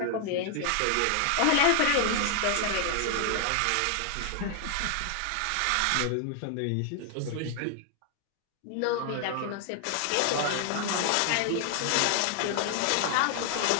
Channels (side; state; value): both; different; correlation 0.00